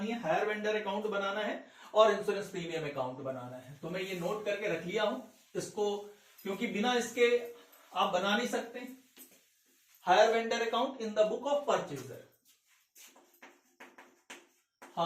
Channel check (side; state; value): both; identical; correlation 1.00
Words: है, हायर वेंडर अकाउंट बनाना है और इंश्योरेंस प्रीमियम अकाउंट बनाना है। तो मैं ये नोट करके रख लिया हूं इसको, क्योंकि बिना इसके आप बना नहीं सकते। Hire vendor account in the book of purchaser,